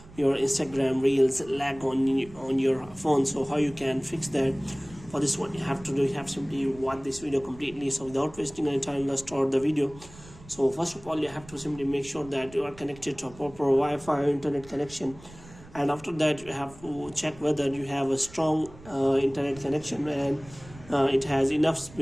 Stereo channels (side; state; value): right; noise; rumble, 20 dB below the sound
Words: your Instagram Reels lag on your phone, so how you can fix that? For this, what you have to do, you have simply watch this video completely. So without wasting any time, let's start the video. So first of all, you have to simply make sure that you are connected to a proper Wi-Fi internet connection, and after that you have to check whether you have a strong internet connection and it has enough